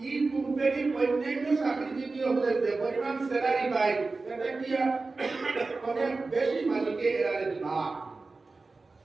এই কোম্পানির অন্যান্য চাকরিজীবী হলে যে পরিমাণ স্যালারি পায় এটা কি অনেক বেশি মালিকে এরারে দিবা।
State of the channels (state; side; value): quieter; left; 3.7 dB